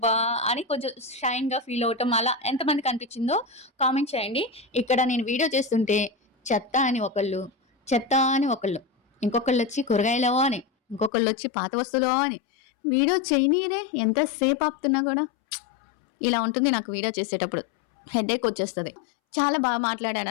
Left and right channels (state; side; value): drops out; right; at 11.1 s